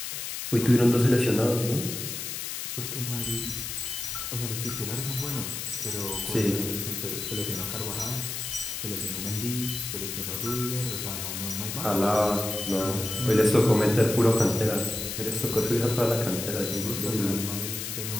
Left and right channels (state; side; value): noise; left; hiss, 5 dB below the sound